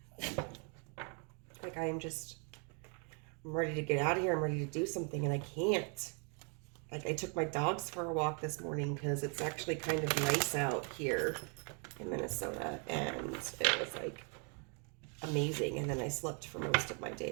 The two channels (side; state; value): left; quieter; 38.5 dB